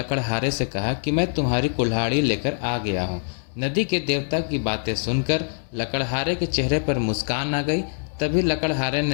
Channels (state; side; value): silent; right; digital silence